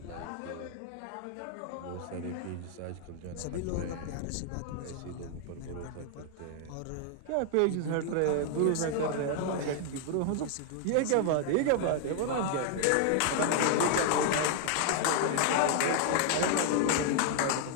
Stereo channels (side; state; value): both; different; correlation 0.00